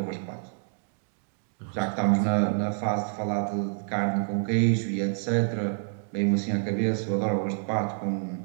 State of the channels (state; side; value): silent; left; 59 dB below the other